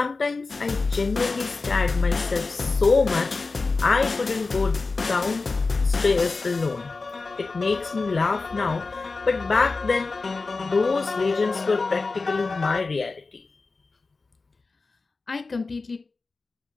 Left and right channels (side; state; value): right; quieter; 3.9 dB